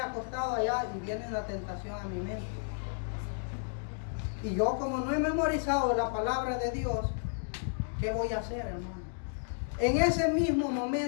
allá y viene la tentación a mi mente. Y yo, como no he memorizado la palabra de Dios, ¿qué voy a hacer, hermano? En ese mismo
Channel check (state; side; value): silent; right; digital silence